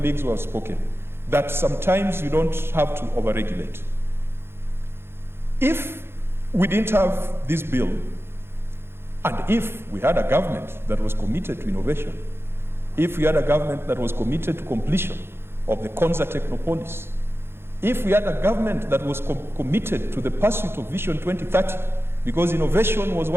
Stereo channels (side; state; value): left; late; 0.11 ms